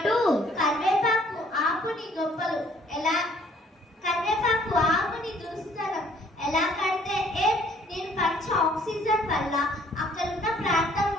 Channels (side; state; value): both; normal; correlation 0.60